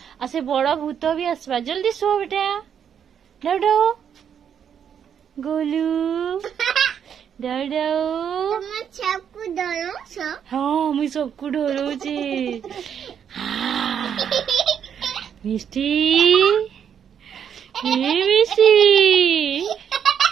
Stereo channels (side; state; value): left; quieter; 8.3 dB